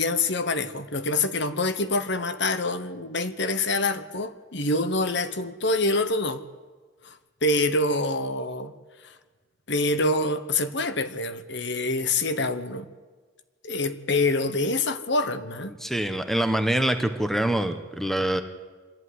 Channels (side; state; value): both; normal; correlation 0.16